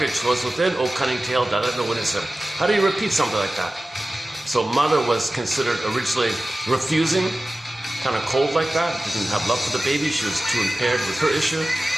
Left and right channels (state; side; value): normal; both; correlation 0.96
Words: was within. Oh, cunning tale, that let no witness him. How do you repeat something like that? So mother was considered originally refusing, kind of cold like that, didn't have love for the baby. She was too impaired with her issue.